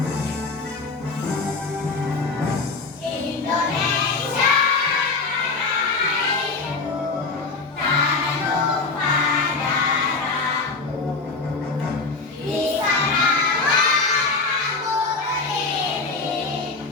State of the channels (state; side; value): quieter; right; 4.0 dB